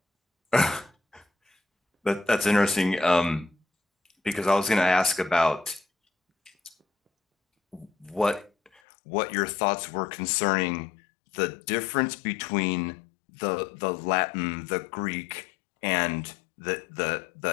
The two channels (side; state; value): right; drops out; at 8.8 s